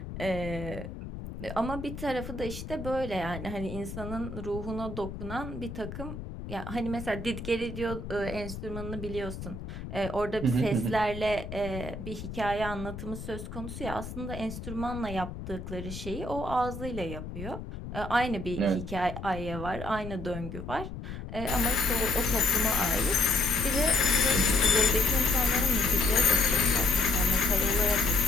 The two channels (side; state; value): left; noise; rumble, 9 dB below the sound